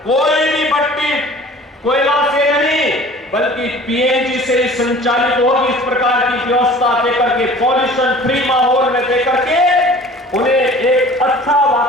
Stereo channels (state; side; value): normal; both; correlation 0.46